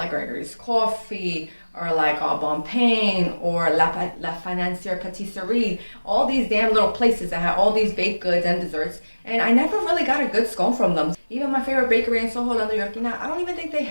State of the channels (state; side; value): inverted; both; correlation -1.00